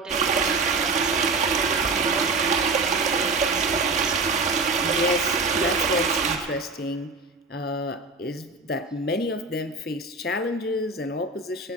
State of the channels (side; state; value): left; quieter; 3.6 dB